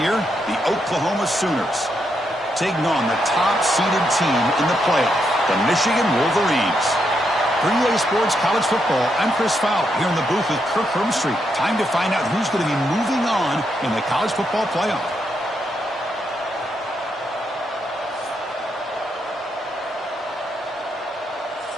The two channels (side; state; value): both; normal; correlation 0.80